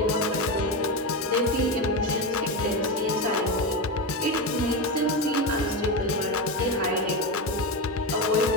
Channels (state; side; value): normal; both; correlation 0.15